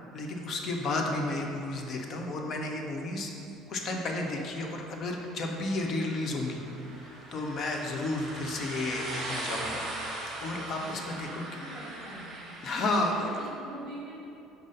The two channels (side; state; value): both; normal; correlation 0.59